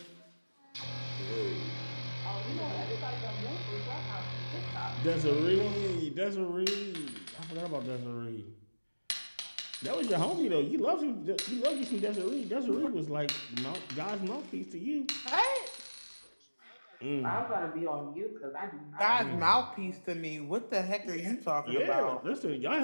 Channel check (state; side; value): inverted; both; correlation -1.00